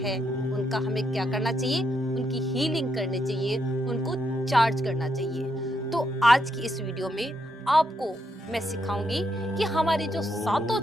उनका हमें क्या करना चाहिए, उनकी हीलिंग करनी चाहिए, उनको चार्ज करना चाहिए। तो आज की इस वीडियो में आपको मैं सिखाऊंगी कि हमारे जो सातों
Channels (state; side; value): normal; both; correlation 0.79